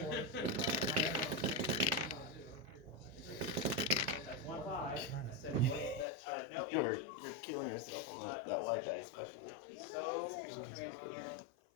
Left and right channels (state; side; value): drops out; right; at 6.1 s